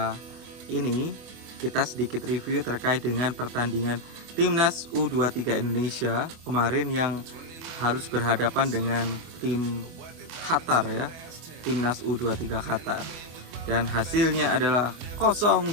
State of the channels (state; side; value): late; left; 25 ms